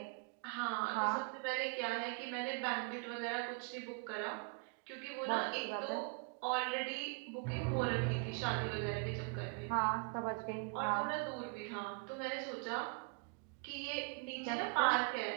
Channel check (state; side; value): quieter; left; 35.5 dB